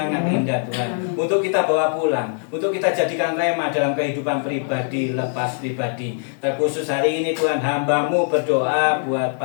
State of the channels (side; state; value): right; silent; 56 dB below the other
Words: indah Tuhan. Untuk kita bawa pulang, untuk kita jadikan rema dalam kehidupan pribadi, lepas pribadi. Terkhusus hari ini Tuhan, hamba-Mu berdoa buat